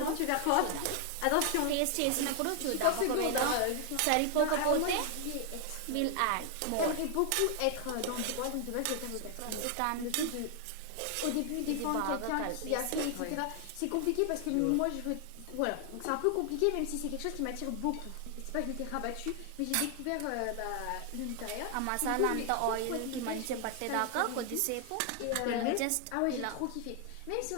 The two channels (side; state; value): both; different; correlation 0.00